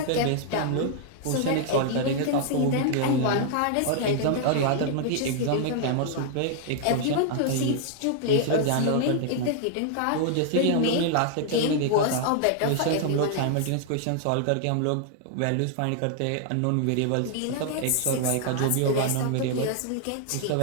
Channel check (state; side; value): different; both; correlation 0.00